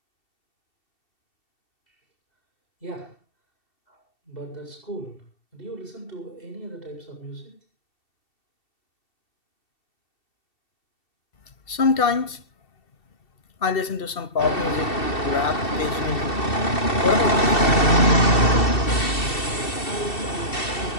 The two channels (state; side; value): late; right; 2.7 ms